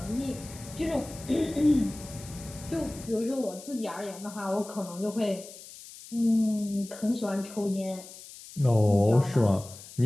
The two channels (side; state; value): left; noise; hiss, 16 dB below the sound